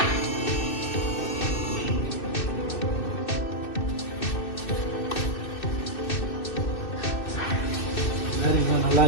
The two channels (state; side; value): late; right; 2.6 ms